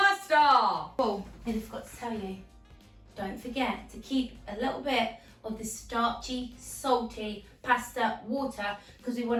Oh, I forgot to tell you, don't forget to keep a little bit of the starchy, salty pasta water because we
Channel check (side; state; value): both; identical; correlation 1.00